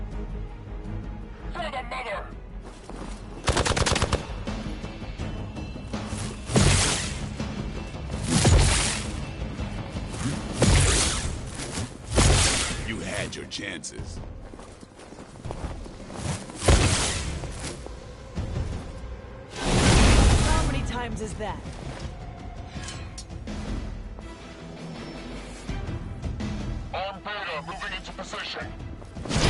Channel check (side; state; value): both; identical; correlation 1.00